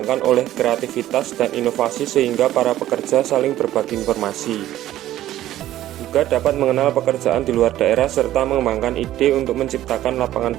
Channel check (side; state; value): left; quieter; 13.6 dB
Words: oleh kreativitas dan inovasi sehingga para pekerja saling berbagi informasi. Juga dapat mengenal pekerjaan di luar daerah serta mengembangkan ide untuk menciptakan lapangan